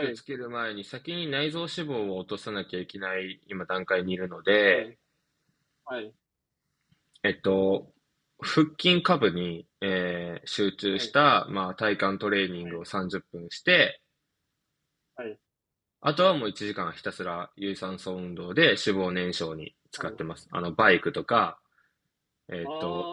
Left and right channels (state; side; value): identical; both; correlation 1.00